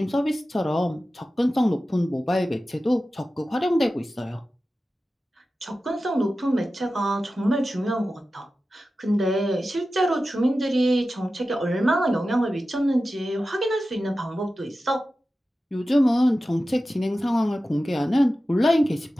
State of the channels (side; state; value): both; normal; correlation 0.94